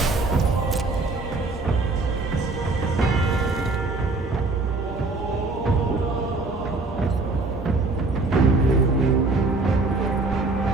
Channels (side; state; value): left; quieter; 3.5 dB